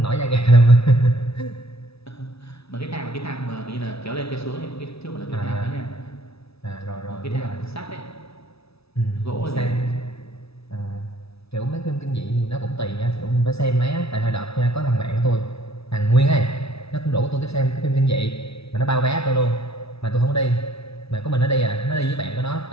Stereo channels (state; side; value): late; right; 0.78 ms